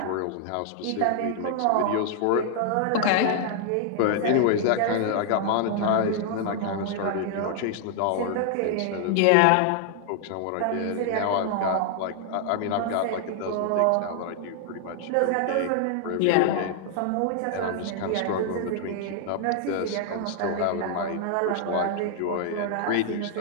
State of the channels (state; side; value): different; both; correlation 0.00